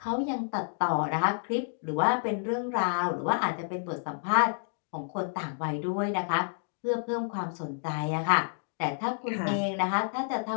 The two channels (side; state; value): right; silent; digital silence